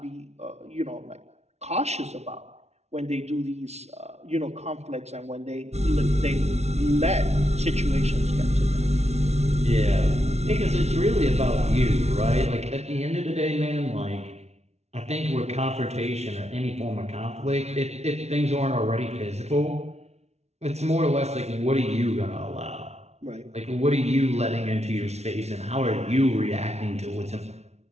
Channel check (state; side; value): late; left; 0.31 ms